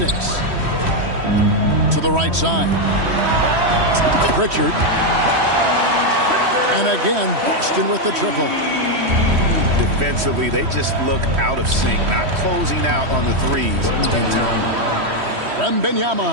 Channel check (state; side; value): late; left; 3.1 ms